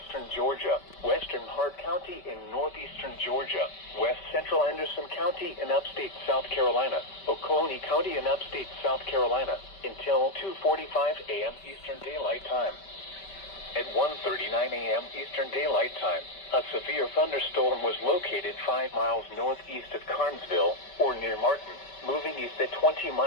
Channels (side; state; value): right; late; 5.2 ms